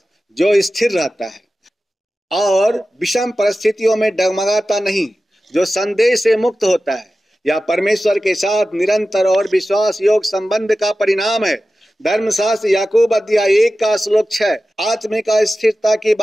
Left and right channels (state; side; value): normal; both; correlation 0.94